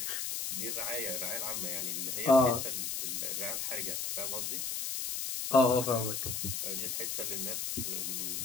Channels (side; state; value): left; noise; hiss, 2 dB below the sound